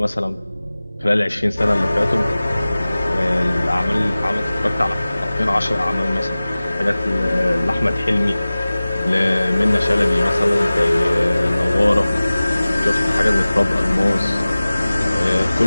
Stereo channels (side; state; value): both; inverted; correlation -0.98